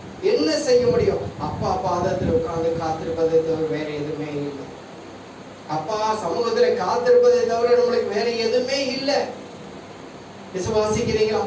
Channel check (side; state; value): both; identical; correlation 1.00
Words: என்ன செய்ய முடியும்? அப்பா பாதத்தில் உட்கார்ந்து காத்திருப்பதை தவிர வேற எதுவுமே இல்லை. அப்பா சமூகத்துல காத்திருப்பதை தவிர நம்மளுக்கு வேற எதுவுமே இல்லை. விசுவாசிக்கிறீங்களா?